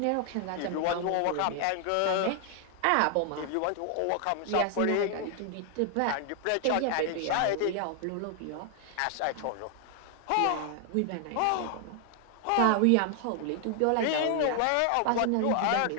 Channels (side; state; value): both; different; correlation 0.00